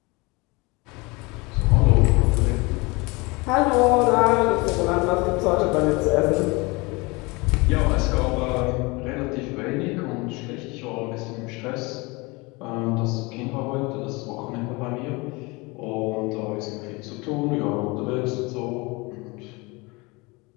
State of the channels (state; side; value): quieter; right; 25.7 dB